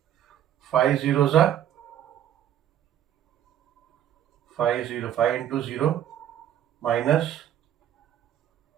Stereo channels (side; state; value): left; quieter; 10.8 dB